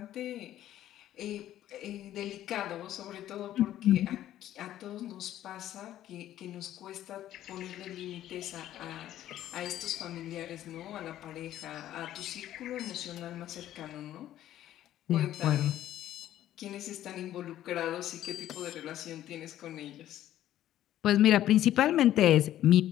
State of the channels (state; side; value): quieter; right; 12.6 dB